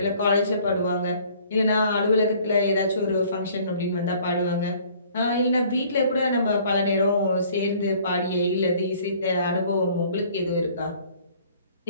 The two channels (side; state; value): both; inverted; correlation -0.56